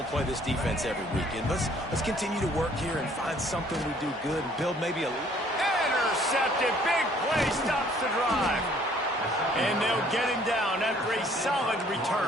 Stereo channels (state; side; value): normal; both; correlation 0.59